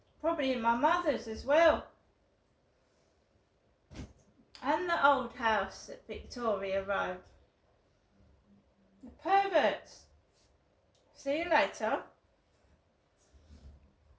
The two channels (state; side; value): identical; both; correlation 1.00